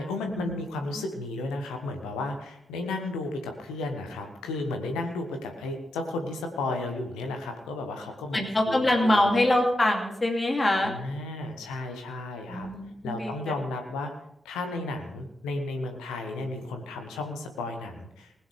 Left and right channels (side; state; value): both; normal; correlation 0.83